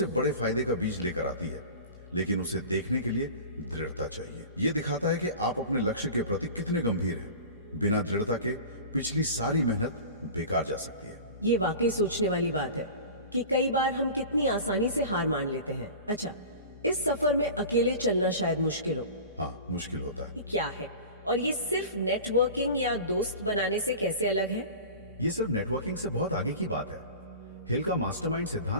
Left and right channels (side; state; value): both; inverted; correlation -0.36